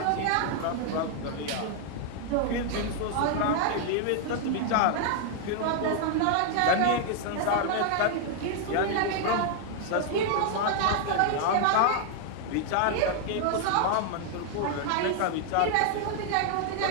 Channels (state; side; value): different; both; correlation 0.00